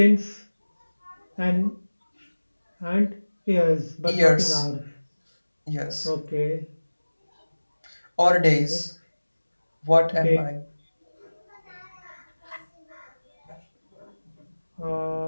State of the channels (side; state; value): both; inverted; correlation -1.00